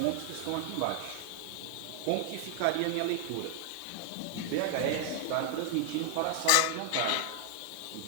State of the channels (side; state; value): both; different; correlation 0.00